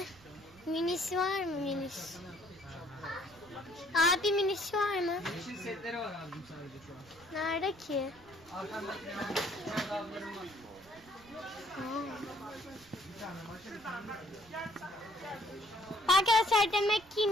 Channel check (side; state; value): right; noise; rumble, 24 dB below the sound